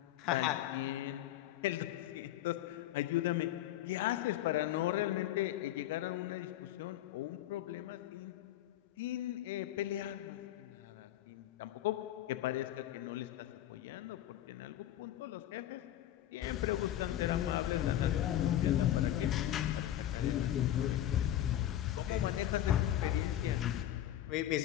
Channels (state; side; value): quieter; right; 12.6 dB